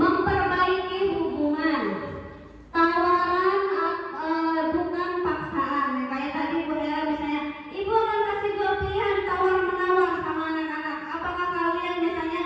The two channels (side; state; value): both; identical; correlation 1.00